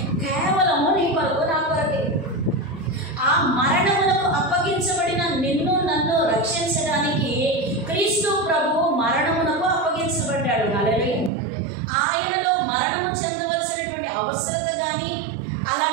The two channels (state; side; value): drops out; left; at 11.3 s